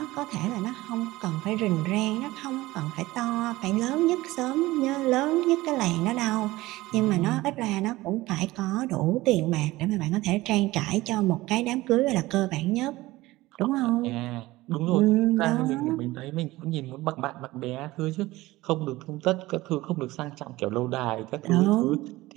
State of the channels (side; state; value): left; quieter; 18.7 dB